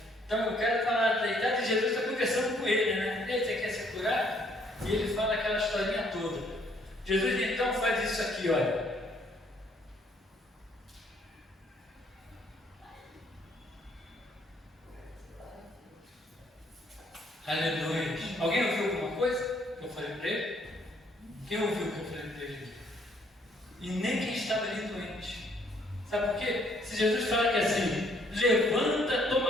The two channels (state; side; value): normal; both; correlation 0.66